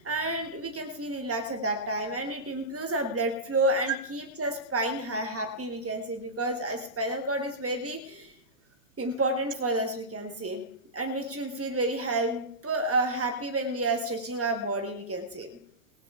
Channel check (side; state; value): both; normal; correlation -0.15